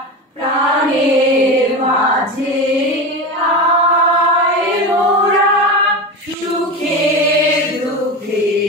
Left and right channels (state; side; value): normal; both; correlation 0.23